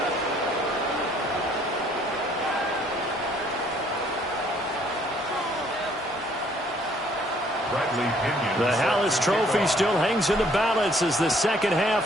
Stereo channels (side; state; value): both; normal; correlation 0.63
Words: The Hallis Trophy still hangs in the balance as the second